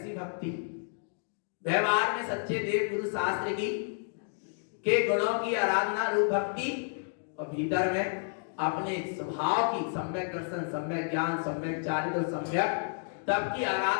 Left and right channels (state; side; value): silent; right; digital silence